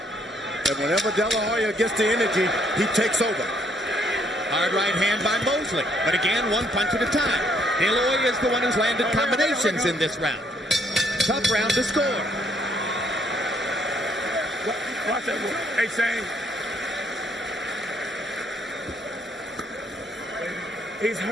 And whenever De La Hoya gets the energy, he takes over. Hard right hand by Mosley. But again, 1 punch at a time. De La Hoya is the one who's landed combinations in this round. Tough round to score. Watch that. Hey, Shane. He's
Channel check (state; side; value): normal; both; correlation 0.68